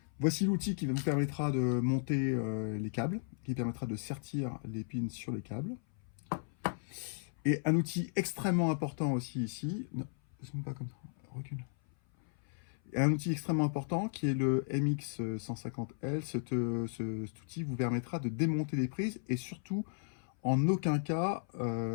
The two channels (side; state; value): right; silent; 54 dB below the other